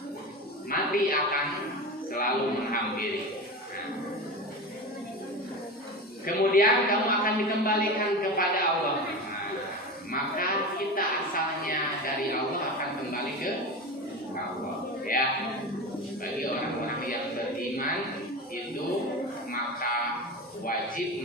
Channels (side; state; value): both; normal; correlation 0.26